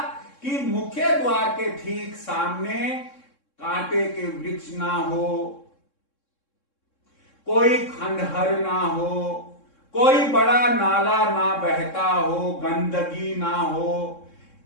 कि मुख्य द्वार के ठीक सामने कांटे के वृक्ष ना हो, कोई खंडहर ना हो, कोई बड़ा नाला ना बहता हो, गंदगी ना हो।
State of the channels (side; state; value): right; late; 3.7 ms